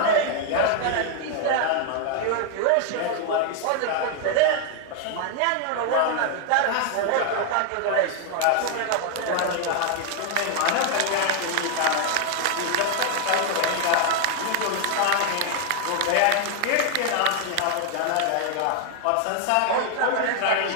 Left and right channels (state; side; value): different; both; correlation 0.00